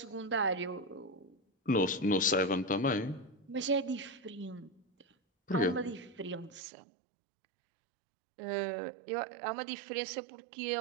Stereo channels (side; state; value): left; drops out; at 6.6 s